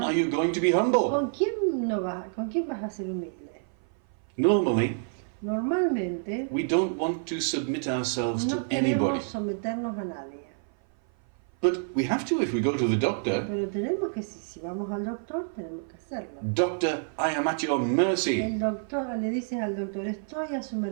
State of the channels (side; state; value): left; silent; 56 dB below the other